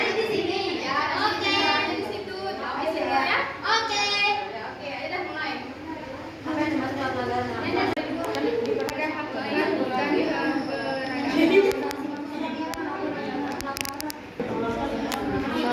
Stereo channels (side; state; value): both; identical; correlation 1.00